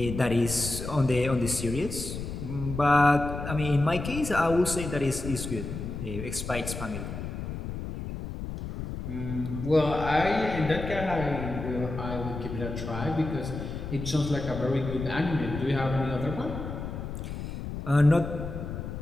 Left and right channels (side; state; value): left; noise; rumble, 7 dB below the sound